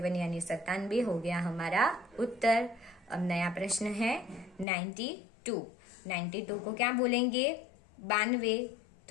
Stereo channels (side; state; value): right; drops out; at 4.7 s